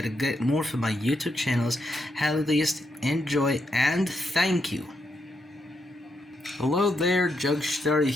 more from my YouTube channels. At least enjoy and thank you. Hello there, Jugstar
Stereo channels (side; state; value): both; normal; correlation 0.81